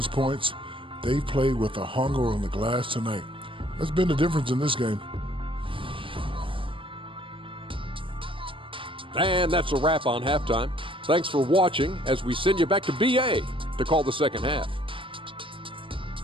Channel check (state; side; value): late; left; 0.25 ms